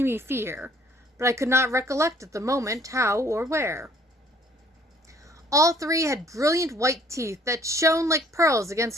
fear, but I could not recollect at the moment how or where. All three had brilliant white teeth that shone like pearls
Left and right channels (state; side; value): normal; both; correlation 0.59